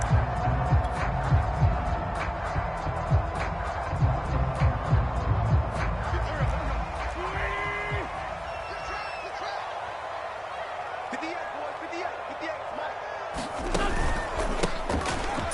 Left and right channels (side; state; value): both; identical; correlation 1.00